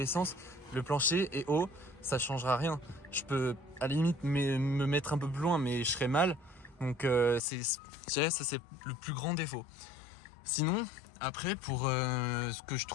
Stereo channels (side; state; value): right; drops out; at 7.4 s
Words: sens, le plancher est haut, ça changera rien. Je peux à la limite me mettre un peu plus loin, mais je serai mal. Donc ça c'est le plus grand défaut. Sinon, après, pour ce que je